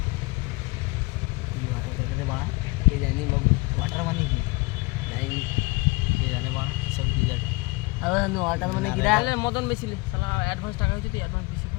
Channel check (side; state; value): right; quieter; 25.4 dB